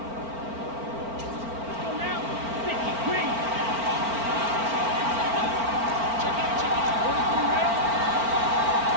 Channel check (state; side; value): late; left; 4.4 ms